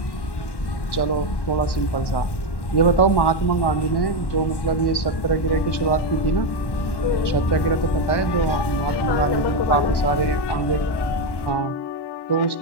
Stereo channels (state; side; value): late; right; 1.1 ms